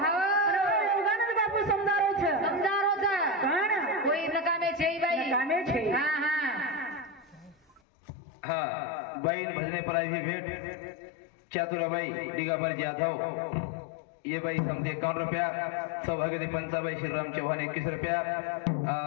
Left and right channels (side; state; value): right; drops out; at 7.8 s